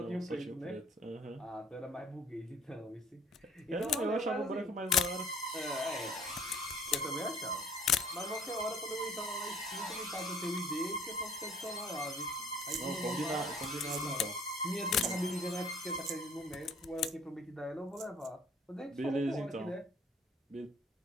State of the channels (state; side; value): normal; both; correlation 0.55